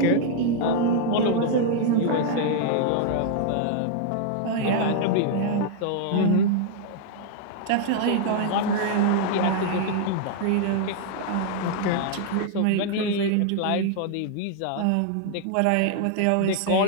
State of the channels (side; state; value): both; different; correlation -0.01